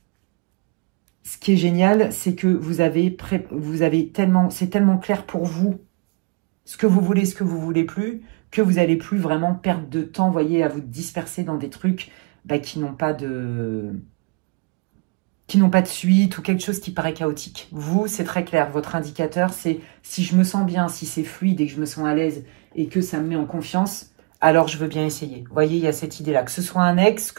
ce qui est génial, c'est que vous avez tellement, c'est tellement clair pour vous ce que vous voulez plus, que vous n'allez plus vraiment perdre de temps, voyez, à vous disperser dans des trucs qui n'ont pas de suite ou quelque chose qui paraît chaotique. Vous, c'est très clair. Votre indicateur, c'est si je me sens bien, si c'est fluide et que je me sens à l'aise et que ça me met en confiance, alors je veux bien essayer. Vous voyez, il y a cette idée-là. Que ce soit un ex,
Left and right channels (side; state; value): left; quieter; 29.2 dB